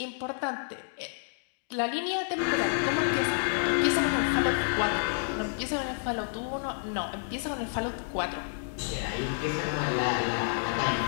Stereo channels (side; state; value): right; silent; digital silence